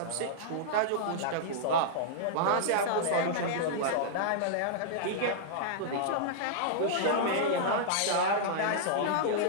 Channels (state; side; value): different; both; correlation -0.02